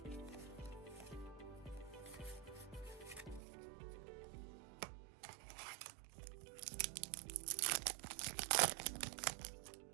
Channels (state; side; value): drops out; left; at 3.4 s